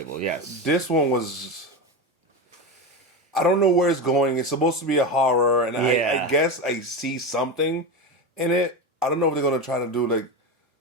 yes. This one was... I don't know where it's going. It's supposed to be a horror, and Yeah. I guess I see something in it. I don't know if they're going to try to do, like,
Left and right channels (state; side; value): normal; both; correlation 0.18